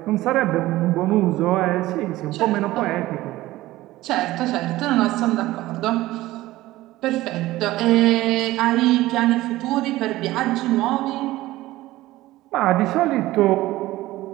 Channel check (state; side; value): quieter; left; 17.1 dB